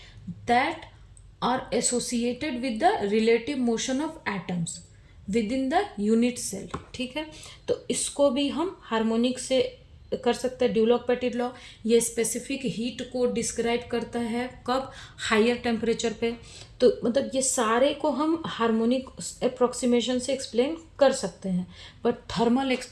that are associated with the relative motion of atoms within the unit cell, ठीक है। तो इसको भी हम हार्मोनिक से कर सकते हैं ड्यूलॉक-पेटिट लॉ। ये स्पेसिफिक हीट को डिस्क्राइब करता है कब, हायर टेम्परेचर पे। तो मतलब ये सारे को हम हार्मोनिक अप्रोक्सीमेशन से एक्सप्लेन कर सकते हैं, बट थर्मल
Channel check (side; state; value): both; identical; correlation 1.00